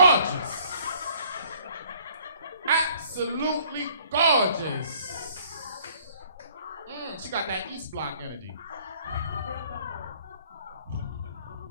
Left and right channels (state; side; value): inverted; both; correlation -0.58